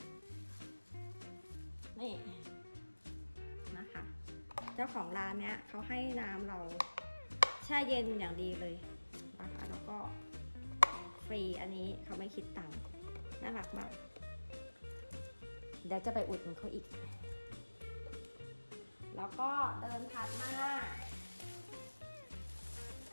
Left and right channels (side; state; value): both; inverted; correlation -1.00